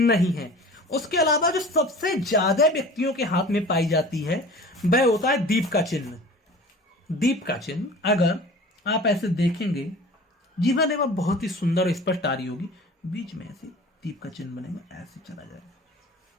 है। उसके अलावा जो सबसे ज्यादा व्यक्तियों के हाथ में पाई जाती है वह होता है दीप का चिन्ह। दीप का चिन्ह अगर आप ऐसे देखेंगे, जीवन रेखा बहुत ही सुंदर और स्पष्ट आ रही होगी, बीच में ऐसे दीप का चिन्ह बनेगा, ऐसे चला जाएगा।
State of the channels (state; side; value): normal; both; correlation 0.41